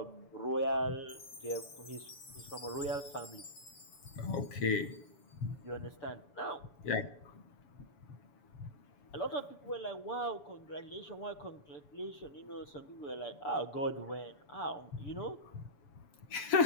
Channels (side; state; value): right; late; 7.0 ms